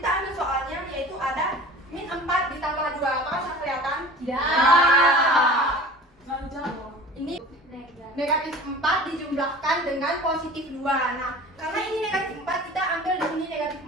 ambil soalnya, yaitu ada min 4 ditambah 2. Apakah sudah kelihatan? Ya. Ini negatif 4 dijumlahkan dengan positif 2. Nah, karena ini negatif 4, kita ambil di sini negatif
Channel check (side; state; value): both; normal; correlation 0.41